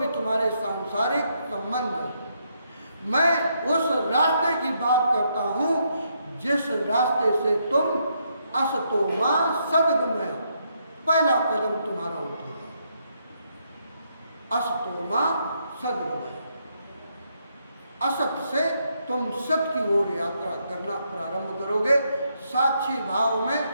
तुम्हारे सांसारिक संबंध है, मैं उस रास्ते की बात करता हूँ जिस रास्ते से तुम असतो मां सद्गमय, पहला कदम तुम्हारा उठेगा। असतो मां सद्गमय, असत से तुम सत की ओर यात्रा करना प्रारंभ करोगे। साक्षी भाव में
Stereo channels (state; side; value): inverted; both; correlation -0.76